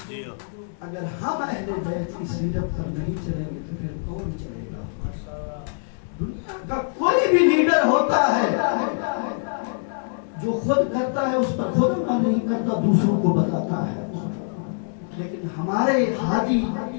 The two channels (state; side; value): silent; right; 63 dB below the other